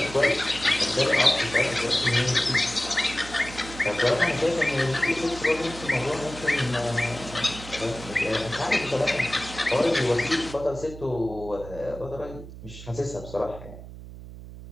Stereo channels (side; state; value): right; noise; hum, 14 dB below the sound